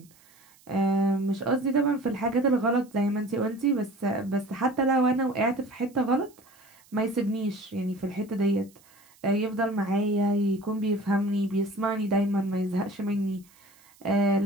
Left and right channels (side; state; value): right; noise; hiss, 29 dB below the sound